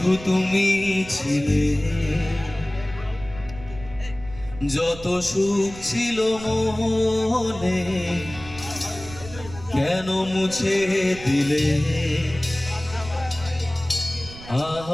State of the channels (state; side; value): noise; right; rumble, 15 dB below the sound